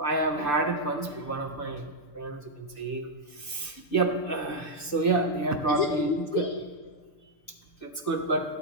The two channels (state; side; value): late; right; 6.8 ms